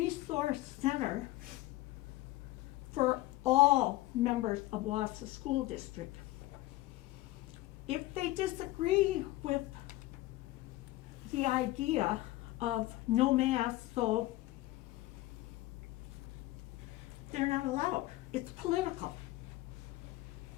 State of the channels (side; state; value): right; quieter; 17.9 dB